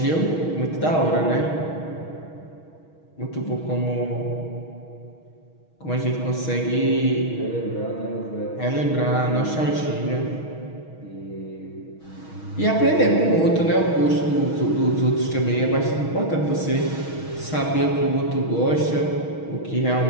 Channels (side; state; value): right; late; 6.3 ms